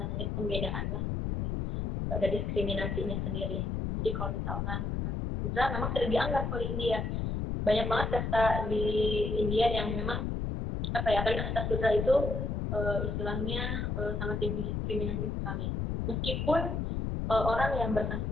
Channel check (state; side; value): noise; left; rumble, 1 dB below the sound